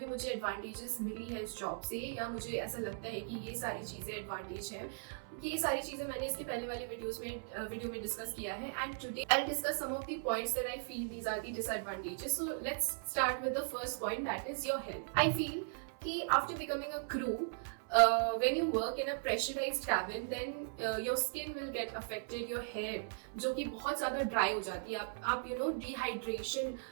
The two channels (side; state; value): left; silent; 52 dB below the other